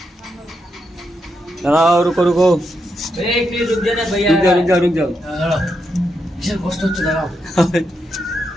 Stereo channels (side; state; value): both; normal; correlation 0.83